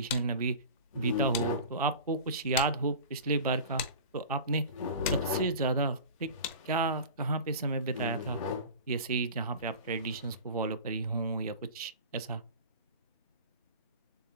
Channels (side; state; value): both; inverted; correlation -0.35